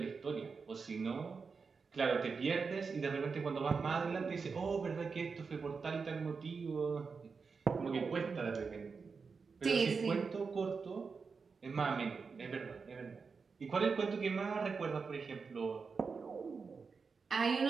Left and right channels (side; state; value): left; quieter; 5.1 dB